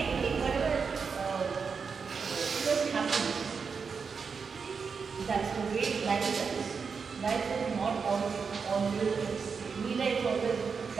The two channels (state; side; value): quieter; left; 5.6 dB